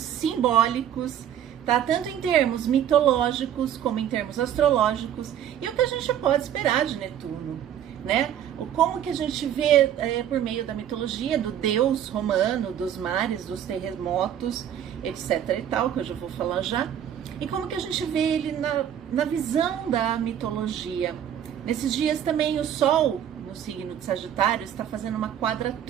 tá? Tanto em termos mitológicos como em termos astrológicos, e o que a gente pode esperar de Netuno, né? Como que a gente vê por meio da mitologia do deus romano, dos mares, dos terremotos, etc e tal, que eu já vou falar já, e como que a gente vê ele na visão da mitologia. Nesses dias também o Sol, no signo de Sagitário, está fazendo uma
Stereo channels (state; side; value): quieter; left; 10.0 dB